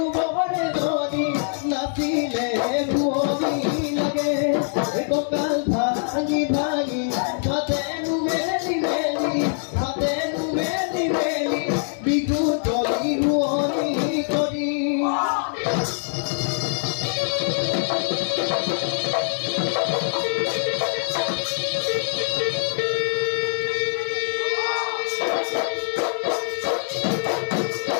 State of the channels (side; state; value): right; silent; digital silence